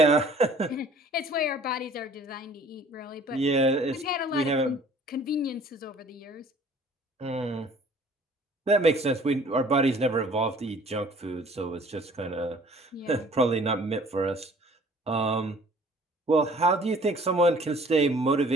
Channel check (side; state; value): both; normal; correlation 0.52